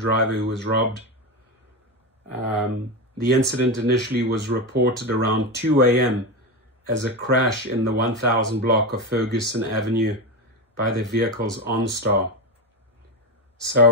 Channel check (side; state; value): both; normal; correlation 0.16